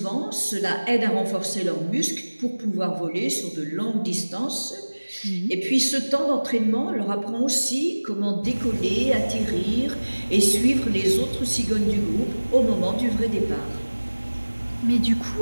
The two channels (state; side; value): inverted; both; correlation -1.00